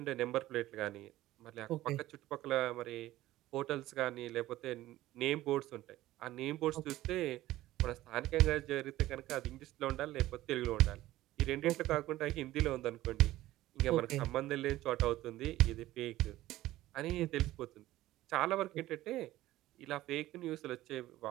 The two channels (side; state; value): left; quieter; 15.7 dB